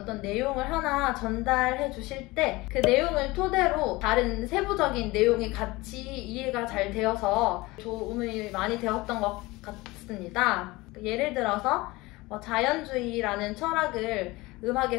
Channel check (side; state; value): right; quieter; 21.5 dB